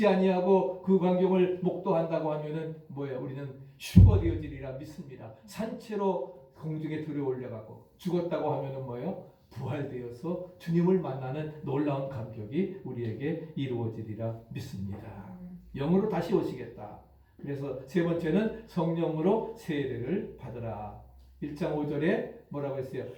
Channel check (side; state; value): both; identical; correlation 1.00